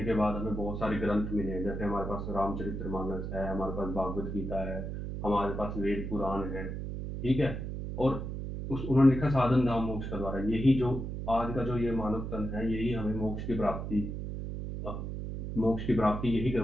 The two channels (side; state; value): right; noise; hum, 5 dB below the sound